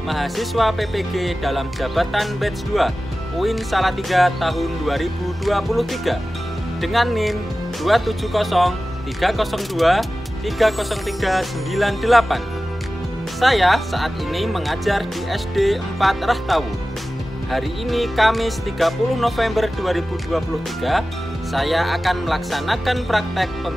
mahasiswa PPG dalam jabatan batch 2 UIN Salatiga tahun 2023 dengan NIM 27030230398. Saya saat ini mengajar di SD 4 Rahtawu. Hari ini Kamis 30 November 2023, saya akan melaksanakan praktek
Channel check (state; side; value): normal; both; correlation 0.96